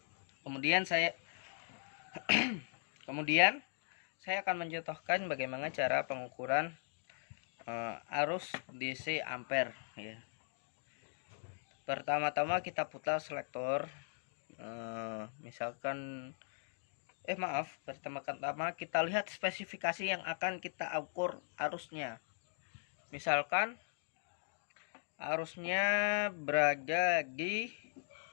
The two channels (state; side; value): silent; right; digital silence